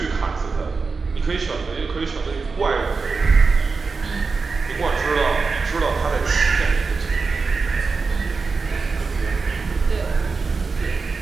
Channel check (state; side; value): quieter; left; 4.5 dB